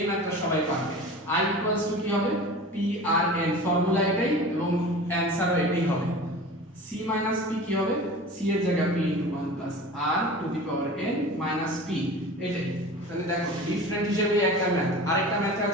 ম্যাথটা সবাই পারবে। i = কি হবে, p r n, ফর্মুলা এটাই এবং অ্যানসারও এটাই হবে। c - p কি হবে, c এর জায়গায় p * 1 + r to the power n - p, এটাই। তাহলে দেখো ডিফারেন্ট হিসেবে একটা ম্যাথ। আরেকটা ম্যাথ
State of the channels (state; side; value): normal; both; correlation 0.37